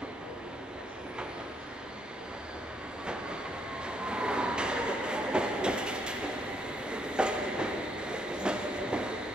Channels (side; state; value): both; normal; correlation 0.73